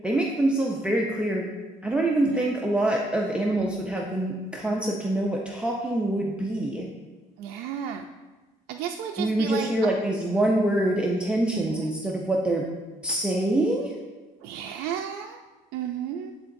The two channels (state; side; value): normal; both; correlation 0.74